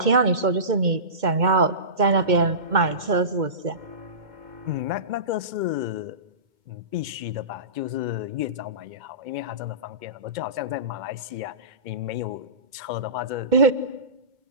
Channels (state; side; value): late; left; 2.2 ms